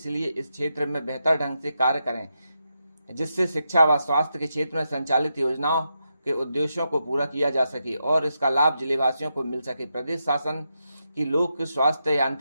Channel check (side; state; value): both; inverted; correlation -0.85